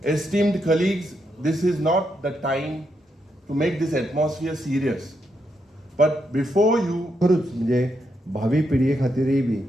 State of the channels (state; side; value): normal; both; correlation 0.81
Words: Esteemed colleagues, this is not the time to make this atmosphere serious. But before you... खरूच म्हणजे भावी पिढये खातीरय बी